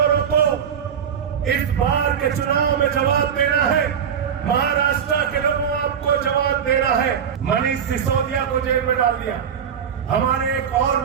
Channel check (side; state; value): left; quieter; 7.9 dB